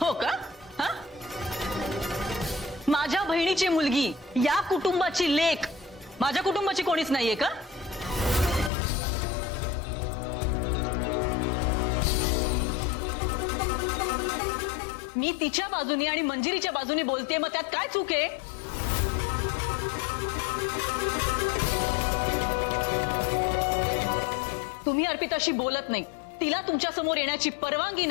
हो का? हा? माझ्या बहिणीची मुलगी, या कुटुंबाची लेक, माझ्या कुटुंबाची कोणीच नाहीये का? मी तिच्या बाजूने आणि मंजिरीच्या बाजूने बोलते, मग त्यात काय चूक आहे? तुम्ही अर्पिताशी बोलत नाही, तिला तुमच्या समोर येण्याची परवानगी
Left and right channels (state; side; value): drops out; right; at 8.7 s